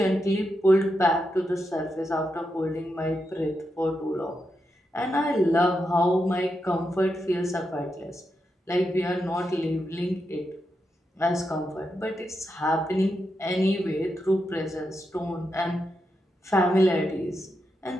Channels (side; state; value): both; normal; correlation 0.85